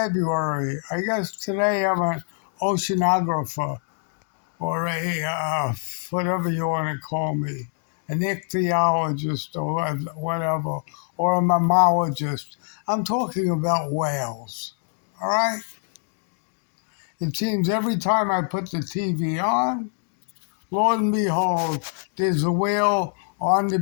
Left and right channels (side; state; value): right; silent; 56 dB below the other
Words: I guess today I'm an oceanographer or a whatever you want to call me, an ichthyologist or whatever, or a mammologist. I'm talking about whales. All right? It seems every time I put the TV on, Lord and behold, there's a whale on the